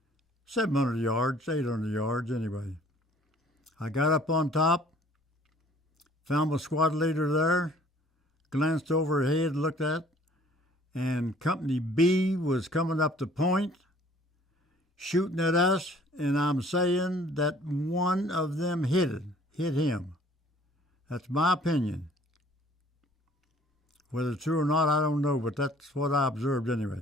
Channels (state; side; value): normal; both; correlation 0.55